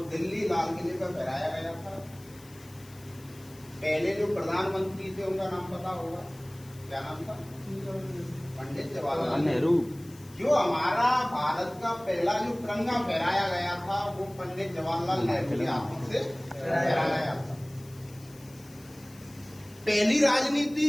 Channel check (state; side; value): noise; left; hiss, 23 dB below the sound